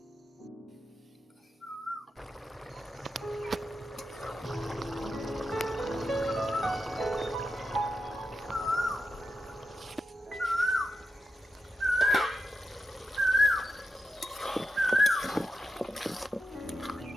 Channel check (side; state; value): both; normal; correlation 0.88